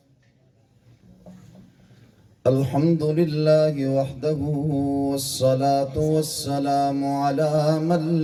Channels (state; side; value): identical; both; correlation 1.00